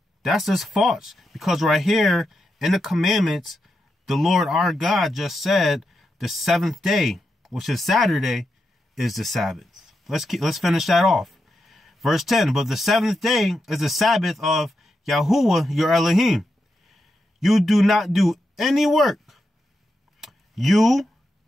That's just false. Because right here in the commandments, the Lord our God just said the 7th day, which is Saturday, is the Sabbath. Let's finish that off. Verse 10, but the 7th day is the Sabbath of Yahuwah, your Elohim. You do not do any work. You,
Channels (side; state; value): both; normal; correlation 0.86